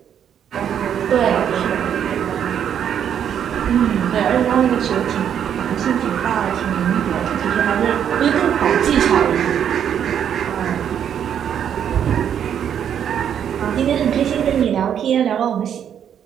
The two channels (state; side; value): quieter; left; 9.0 dB